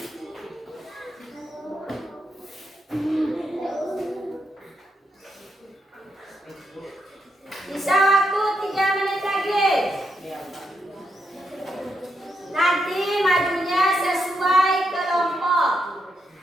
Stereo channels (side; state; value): both; normal; correlation 0.81